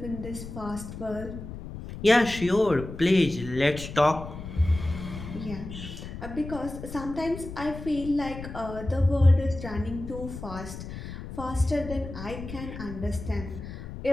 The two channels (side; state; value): left; noise; rumble, 10 dB below the sound